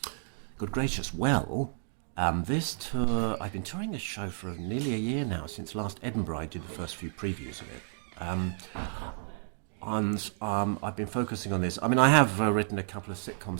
Good gracious, well. This tour, I've been touring this show for nearly a year now, since last Edinburgh I did the first few previews of it. I've been focusing on this. I mean, I have written a couple of sitcom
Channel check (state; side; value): silent; left; digital silence